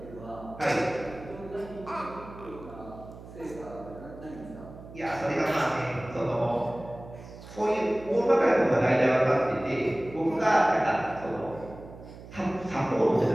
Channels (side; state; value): right; noise; hum, 16 dB below the sound